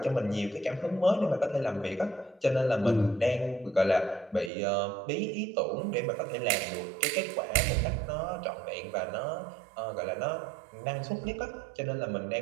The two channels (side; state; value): left; drops out; at 4.5 s